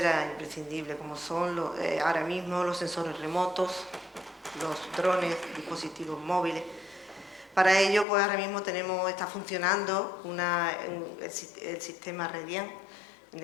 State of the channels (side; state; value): right; drops out; at 8.1 s